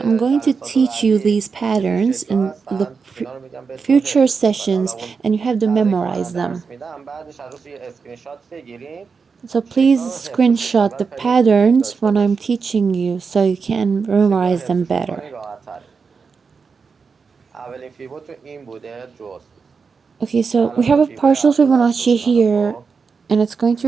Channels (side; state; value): left; quieter; 5.3 dB